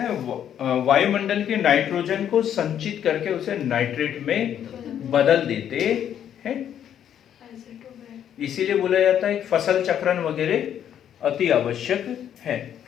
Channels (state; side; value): quieter; right; 9.7 dB